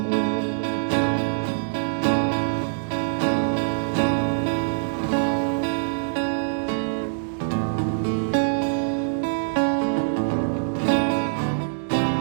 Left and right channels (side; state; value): left; silent; digital silence